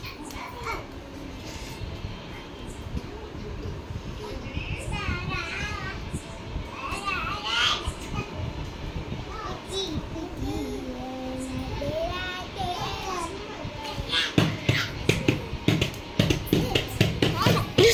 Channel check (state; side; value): identical; both; correlation 1.00